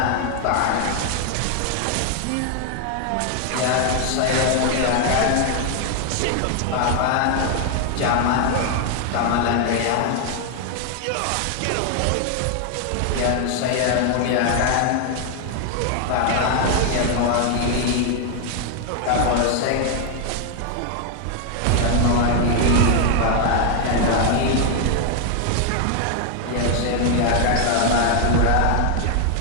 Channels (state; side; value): different; both; correlation 0.00